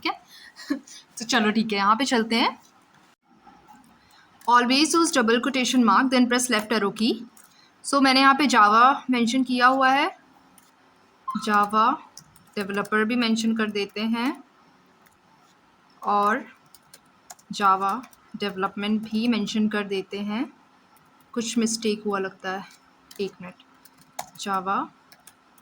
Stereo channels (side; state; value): both; identical; correlation 1.00